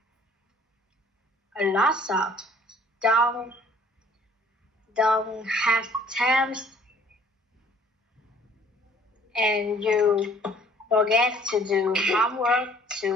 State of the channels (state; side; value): normal; both; correlation 0.56